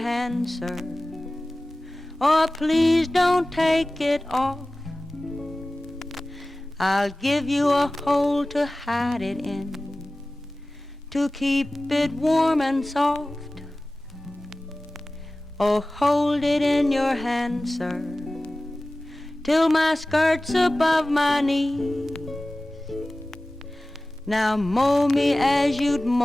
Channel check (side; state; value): both; normal; correlation 0.97